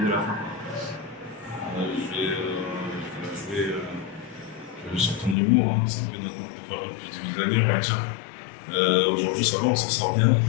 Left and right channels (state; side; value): drops out; right; at 5.4 s